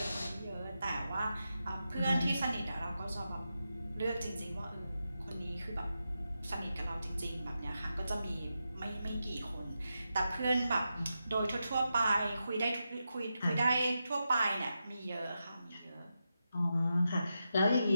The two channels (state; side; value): inverted; both; correlation -0.88